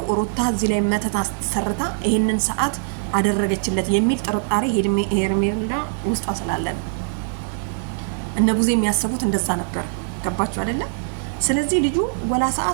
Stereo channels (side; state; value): left; silent; digital silence